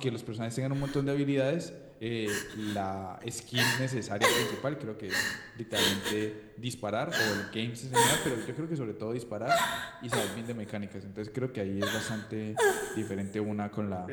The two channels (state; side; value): identical; both; correlation 1.00